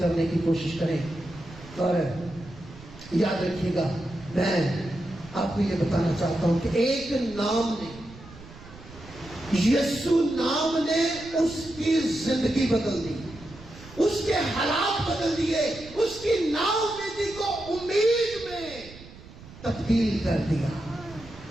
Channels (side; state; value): right; noise; rumble, 18 dB below the sound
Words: کی کوشش کریں. اور یاد رکھیے گا, میں آپ کو یہ بتانا چاہتا ہوں کہ ایک نام نے, یسوع نام نے اس کی زندگی بدل دی, اس کے حالات بدل دیے, اس کی نا امیدی کو امید میں تبدیل کر دیا.